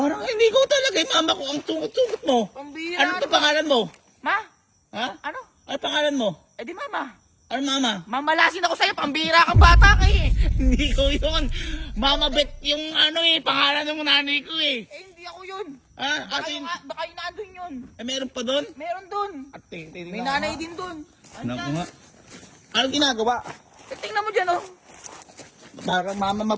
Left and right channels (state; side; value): identical; both; correlation 1.00